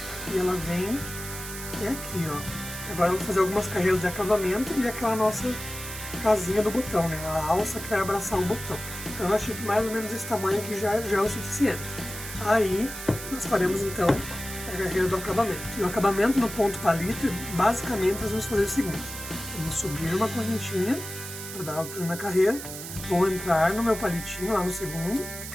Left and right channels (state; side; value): noise; right; hiss, 9 dB below the sound